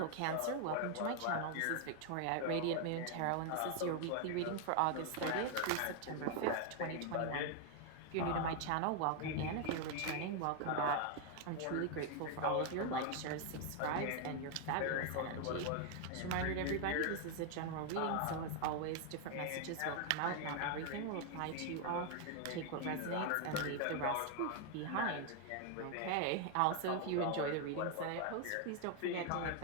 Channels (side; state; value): both; different; correlation 0.00